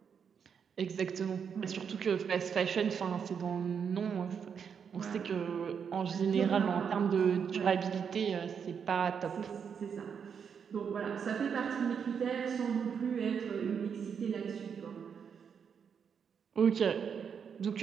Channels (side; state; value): left; quieter; 7.0 dB